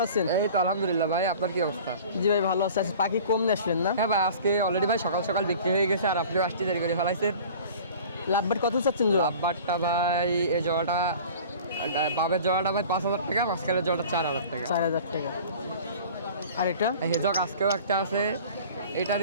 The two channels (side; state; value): both; inverted; correlation -0.43